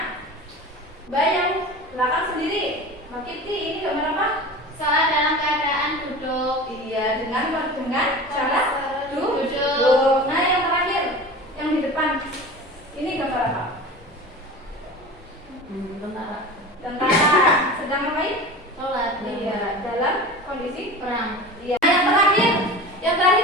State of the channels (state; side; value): normal; both; correlation 0.34